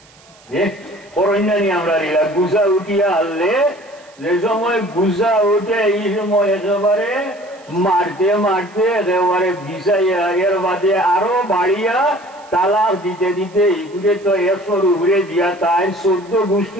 করন্যানি আমরা নিলা গুজা উঠিয়া আনলে, যে সময় গুজা উঠে এই সময় একেবারে মারতে মারতে একেবারে বিষাইয়া, এর বাদে আরো বাড়িয়া তালাক দিতে দিতে এগুলো তো 100 উপরে দিয়া তাই 14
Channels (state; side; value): noise; right; hiss, 27 dB below the sound